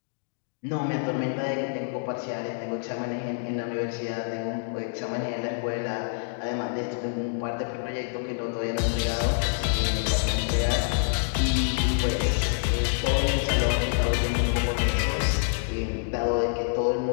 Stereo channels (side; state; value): right; silent; digital silence